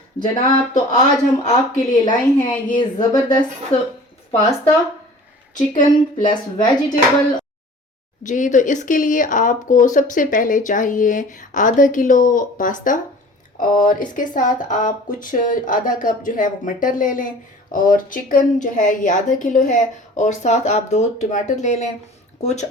जनाब, तो आज हम आपके लिए लाए हैं ये ज़बरदस्त पास्ता, चिकन प्लस वेजिटेबल। जी, तो इसके लिए आपको सबसे पहले चाहिए आधा किलो पास्ता, और इसके साथ आप कुछ आधा कप जो है वो मटर ले लें, और चिकन जो है ये आधा किलो है, और साथ आप 2 टमाटर ले लें। कुछ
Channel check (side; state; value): both; normal; correlation 0.45